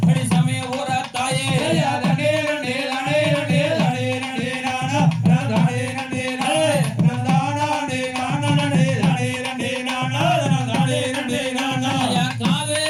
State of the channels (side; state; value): both; identical; correlation 1.00